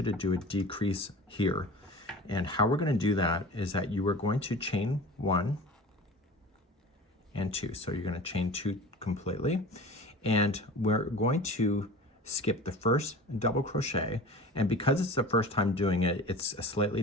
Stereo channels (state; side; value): normal; both; correlation 0.38